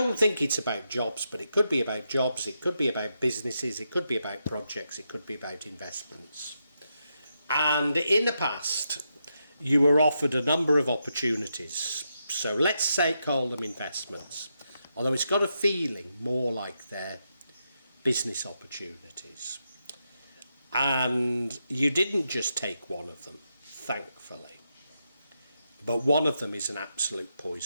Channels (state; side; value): inverted; both; correlation -0.83